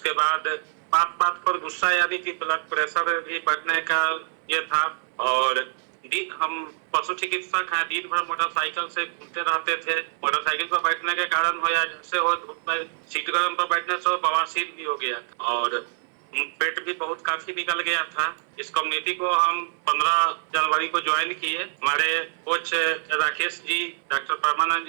बाद बात बात पर गुस्सा, यानी कि ब्लड प्रेशर भी बढ़ने का ये था। और हम पशु चिकित्सक हैं, दिन भर मोटरसाइकिल से घूमते रहते थे। मोटरसाइकिल पर बैठने के कारण हो या जैसे हो, धूप में सीट गर्म पर बैठने से बवासीर भी हो गया और पेट भी बहुत काफी निकल गया था। इस कम्युनिटी को हम 15 जनवरी को ज्वाइन किए। हमारे कोच राकेश जी, डॉक्टर परमानंद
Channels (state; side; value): silent; left; 61 dB below the other